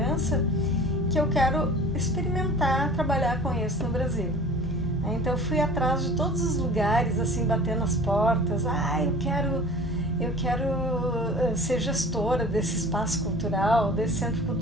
que eu quero experimentar trabalhar com isso no Brasil. Então eu fui atrás de todos os lugares, assim, batendo as portas. Eu quero ser gestora desse espaço cultural, desse centro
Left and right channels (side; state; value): both; normal; correlation 0.43